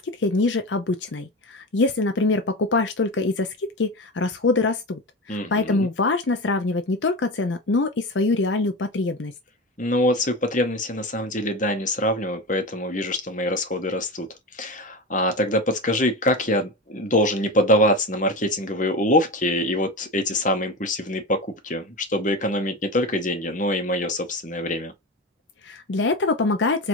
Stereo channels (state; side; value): normal; both; correlation 0.25